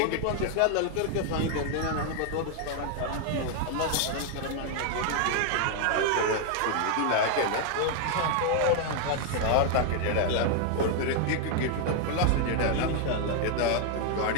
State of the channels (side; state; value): both; different; correlation 0.00